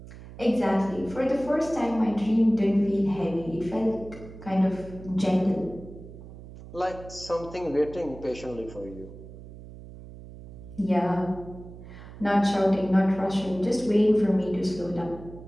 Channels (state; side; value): noise; right; hum, 16 dB below the sound